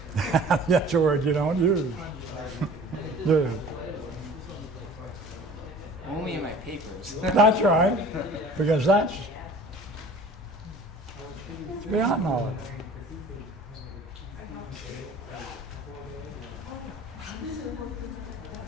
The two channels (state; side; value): normal; both; correlation 0.45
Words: That's a word you don't use. Yeah. Only in my papers. That's right, because that's beyond knowledge.